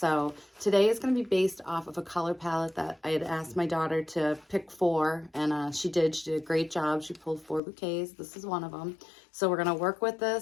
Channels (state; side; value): drops out; right; at 7.6 s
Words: today is going to be based off of a color palette that I had asked my daughter to pick 4, and she did a great job. She pulled 4 bouquets. This is one of them. So we're going to work with